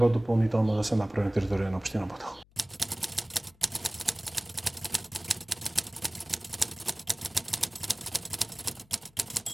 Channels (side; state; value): left; noise; hum, 30 dB below the sound